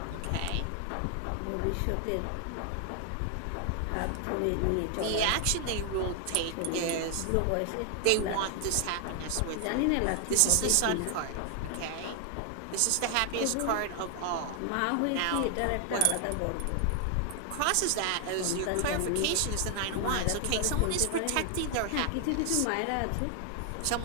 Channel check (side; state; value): both; different; correlation 0.00